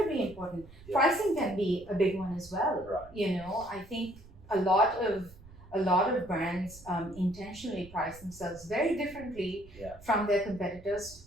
important. Pricing can be a big one as well. Right. I think a lot of brands intentionally price themselves very differently from their competitors,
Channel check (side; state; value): right; noise; rumble, 20 dB below the sound